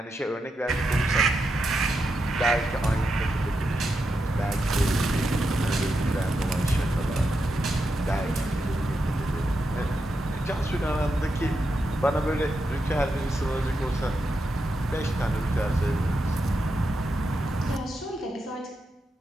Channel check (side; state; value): both; normal; correlation 0.85